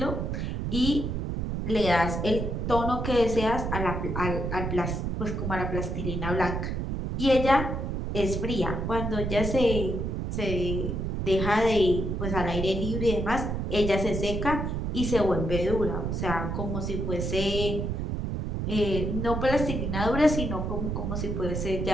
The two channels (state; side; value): noise; right; rumble, 2 dB below the sound